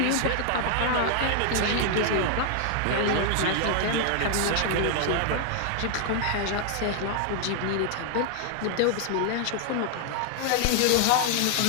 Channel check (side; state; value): both; different; correlation 0.00